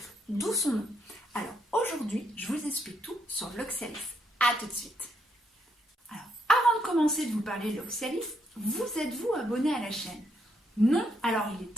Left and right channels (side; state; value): both; normal; correlation 0.76